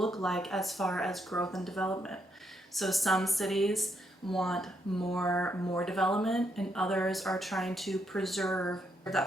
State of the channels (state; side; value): normal; both; correlation 0.77